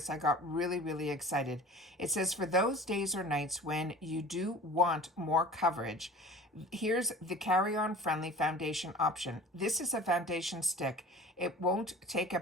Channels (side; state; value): both; normal; correlation 0.41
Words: I got really, really excited. It says, for those days or nights when you do want more coverage, here's the carry-on friendly foundation option. This is a foundation stick. It won't take